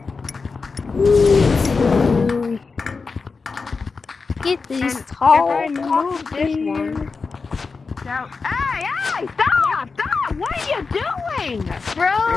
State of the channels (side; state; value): right; quieter; 4.6 dB